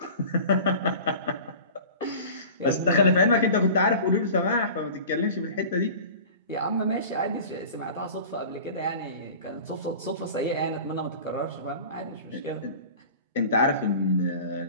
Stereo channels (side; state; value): both; inverted; correlation -0.39